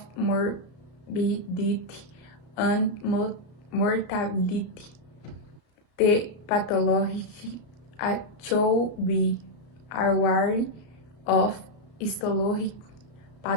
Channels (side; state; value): right; late; 34 ms